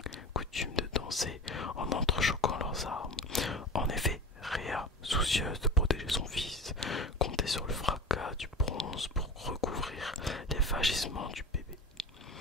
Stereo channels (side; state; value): both; normal; correlation 0.32